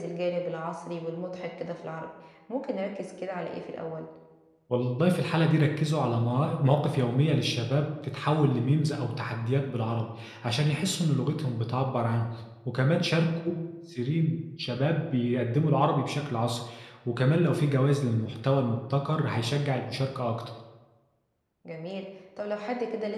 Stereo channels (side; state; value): both; identical; correlation 1.00